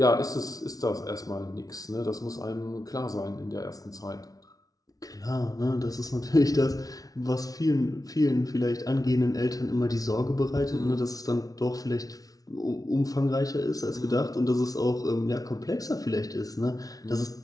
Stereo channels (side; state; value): right; late; 0.18 ms